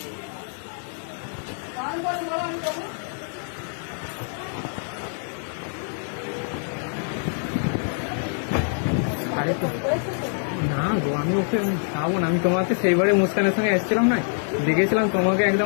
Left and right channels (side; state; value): right; silent; 62 dB below the other